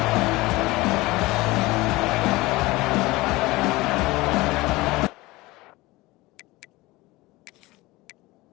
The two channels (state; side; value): quieter; right; 20.8 dB